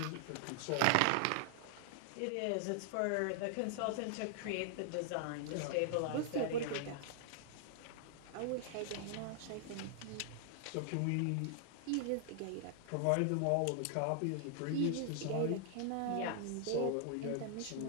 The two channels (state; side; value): different; both; correlation 0.00